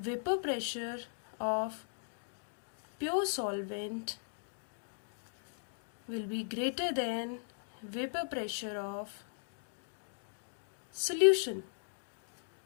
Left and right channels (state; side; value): silent; right; digital silence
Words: pressure of pure solvent will be greater than vapour pressure of solution.